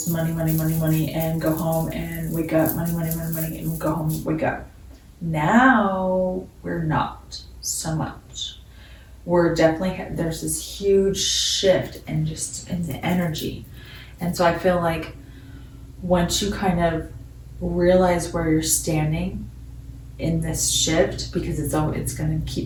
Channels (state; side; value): identical; both; correlation 1.00